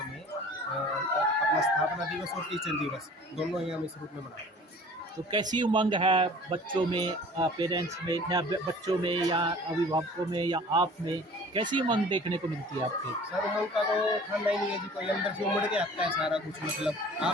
में अपना स्थापना दिवस और टीचर दिवस दोनों ही हम इस रूप में मना रहे हैं। तो कैसी उमंग है बच्चों में, पेरेंट्स में, या बच्चों में या अभिभावकों में या आप में, कैसी उमंग देखने को मिलती है आपके? सर उमंग का तो ठंडा ही नहीं है जी, कोई अंदर से उमड़ के आता है सारा कुछ। मतलब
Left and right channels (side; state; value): both; normal; correlation 0.46